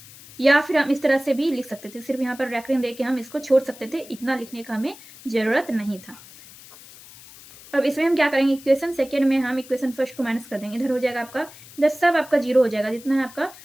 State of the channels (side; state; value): left; noise; hiss, 20 dB below the sound